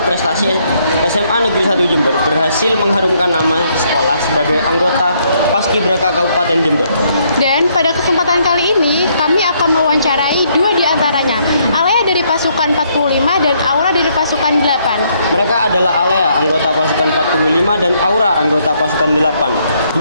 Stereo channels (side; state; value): both; inverted; correlation -0.71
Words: SMA Negeri 1 Jember berhasil mengharumkan nama sekolah sebagai anggota Paskibraka Kabupaten Jember. Dan pada kesempatan kali ini, kami akan mewawancarai dua di antaranya, Alea dari pasukan 45 dan Aura dari pasukan 8. Mereka adalah Alea, anggota pasukan 45, dan Aura, anggota pasukan 8.